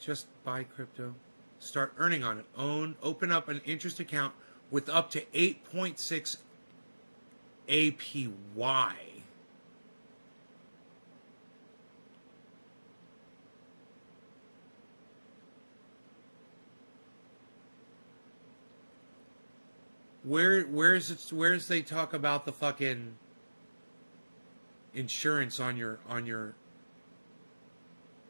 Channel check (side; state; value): both; inverted; correlation -1.00